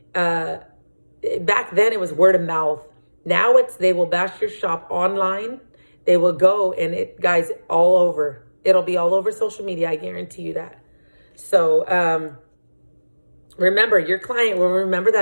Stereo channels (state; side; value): inverted; both; correlation -1.00